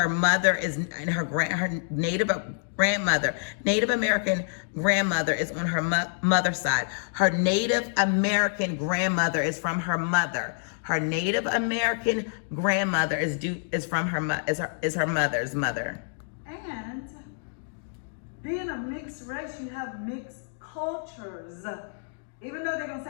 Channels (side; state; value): right; silent; digital silence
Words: mother is, and her Native American grandmother is on her mother's side. Her Native American grandmother is from her mother. Her Native American grandmother is from her mother's mother. And being a mixed race, you have mixed cultures. Even though they're gonna